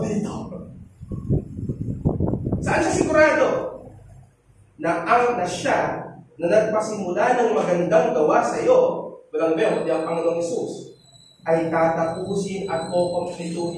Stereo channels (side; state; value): both; identical; correlation 1.00